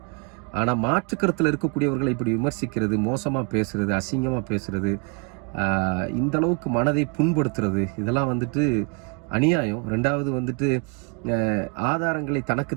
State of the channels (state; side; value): quieter; left; 33.5 dB